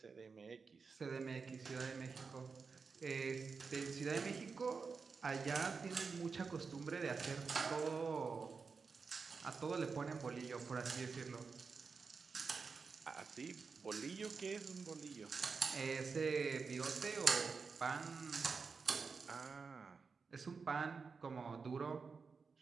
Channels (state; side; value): quieter; left; 5.0 dB